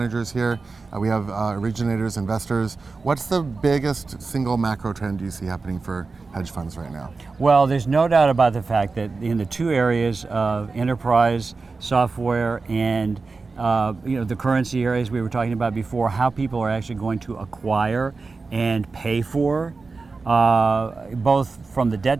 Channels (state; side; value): quieter; left; 4.1 dB